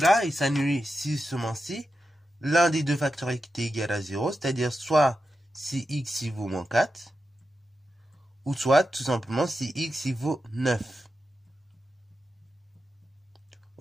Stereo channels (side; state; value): both; normal; correlation 0.89